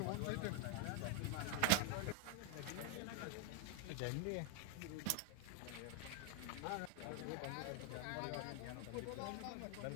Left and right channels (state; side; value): different; both; correlation 0.01